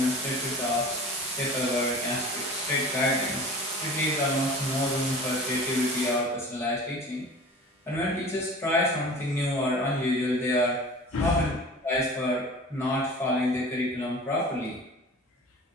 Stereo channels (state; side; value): normal; both; correlation 0.39